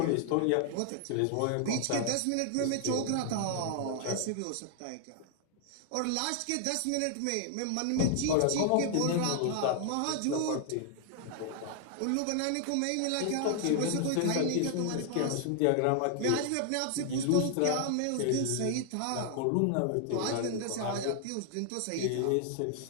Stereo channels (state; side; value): different; both; correlation 0.00